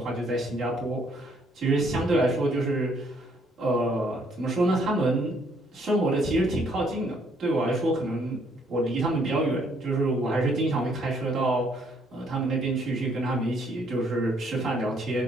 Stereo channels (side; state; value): both; normal; correlation 0.67